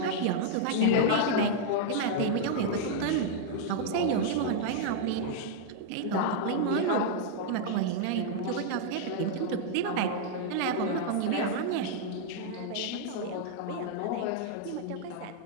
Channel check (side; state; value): both; different; correlation -0.01